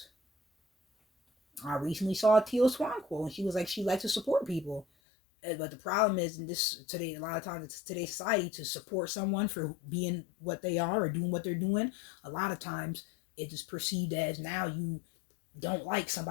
I recently saw Teal Swan quote, and she was like, she likes to support people. But the problem is, in today, a lot of times, it's today's society, to support someone for being what they are or doing what they're doing. A lot of times, it is perceived as now you don't like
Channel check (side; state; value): right; drops out; at 4.9 s